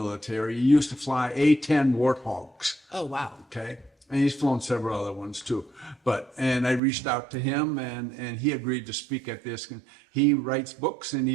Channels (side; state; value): left; drops out; at 6.8 s